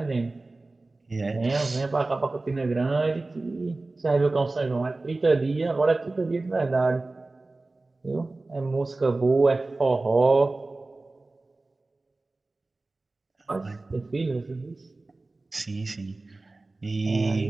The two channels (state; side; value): quieter; left; 3.2 dB